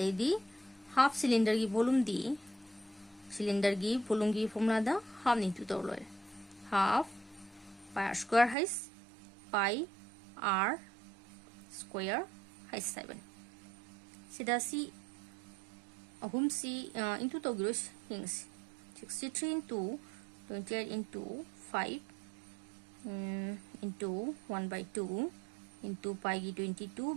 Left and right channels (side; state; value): left; drops out; at 8.6 s